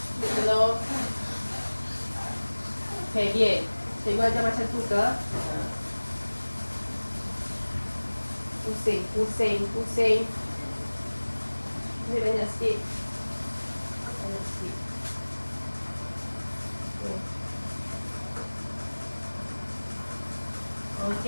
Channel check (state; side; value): inverted; both; correlation -1.00